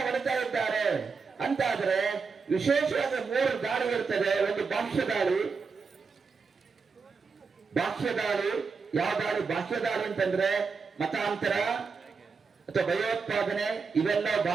ಹೊಡಿತಾ ಇದ್ದಾರೆ ಅಂತಾದ್ರೆ ವಿಶೇಷವಾಗಿ 3 ದಾಳಿ ಇರ್ತದೆ. ಒಂದು ಭಾಷ್ಯ ದಾಳಿ. ಯಾವ ದಾಳಿ? ಭಾಷ್ಯ ದಾಳಿ ಅಂತಂದ್ರೆ ಮತಾಂತರ ಅಥವಾ ಭಯೋತ್ಪಾದನೆ, ಇವೆಲ್ಲ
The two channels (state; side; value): quieter; left; 5.0 dB